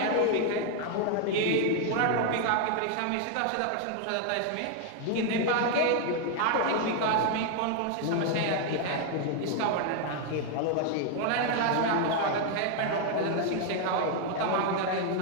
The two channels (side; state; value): both; different; correlation 0.00